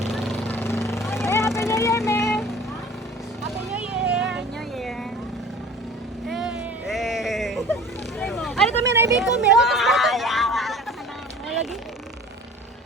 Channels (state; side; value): normal; both; correlation 0.44